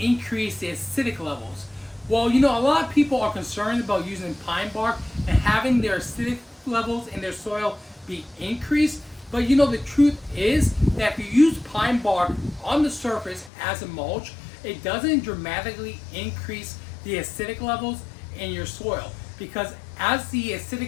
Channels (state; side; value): drops out; right; at 13.5 s